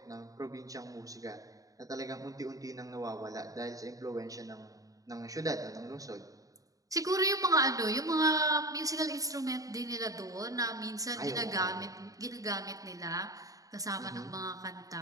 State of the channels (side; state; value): left; late; 0.17 ms